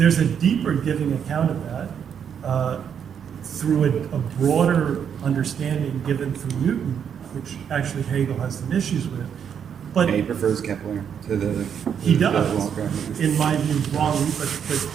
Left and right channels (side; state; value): left; quieter; 8.0 dB